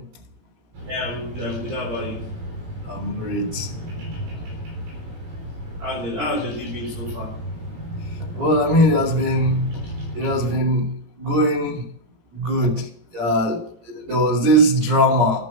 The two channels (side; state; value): left; late; 17 ms